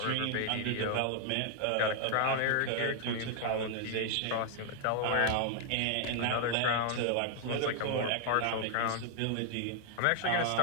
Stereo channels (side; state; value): both; different; correlation 0.00